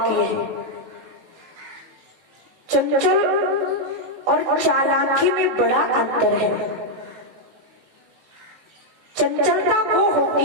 है। चंचल और चालाकी में बड़ा अंतर है। चंचलता वो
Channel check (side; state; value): left; late; 18 ms